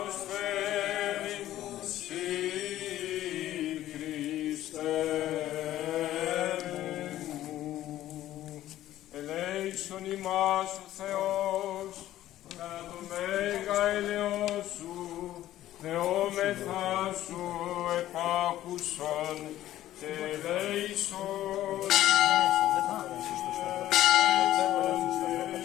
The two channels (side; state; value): right; quieter; 13.7 dB